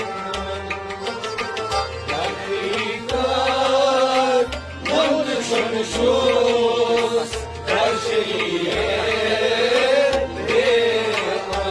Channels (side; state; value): both; identical; correlation 1.00